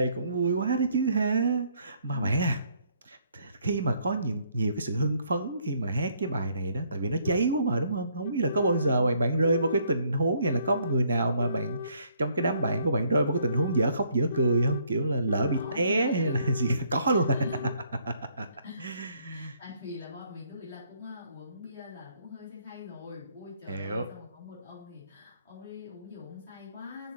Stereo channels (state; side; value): inverted; both; correlation -0.67